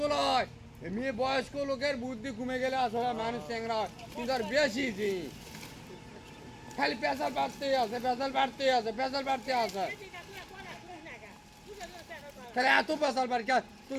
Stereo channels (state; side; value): identical; both; correlation 1.00